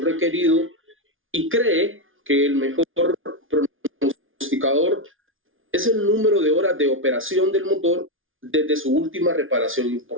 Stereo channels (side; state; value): left; late; 0.58 ms